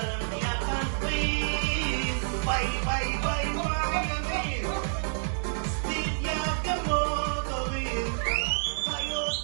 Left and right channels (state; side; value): silent; left; digital silence